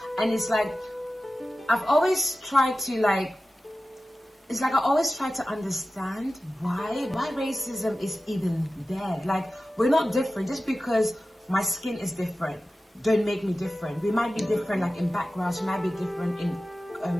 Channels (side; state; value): both; normal; correlation 0.95